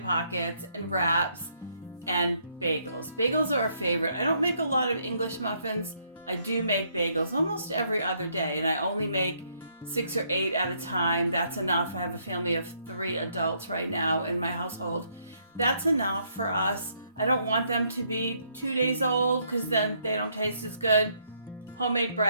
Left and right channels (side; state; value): both; inverted; correlation -0.71